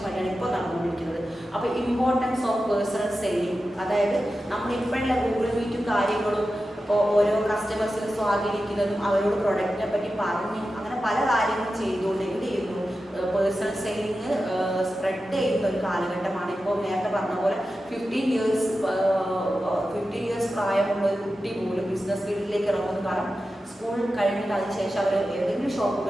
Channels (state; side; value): normal; both; correlation 0.92